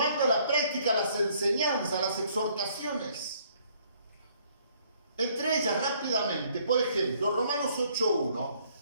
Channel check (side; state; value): both; inverted; correlation -0.64